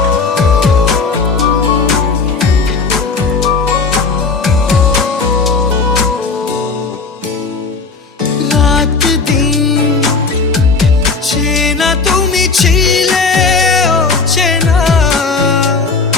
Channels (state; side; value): quieter; right; 4.5 dB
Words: রাত দিন চেনা তুমি ছিলে, চেনা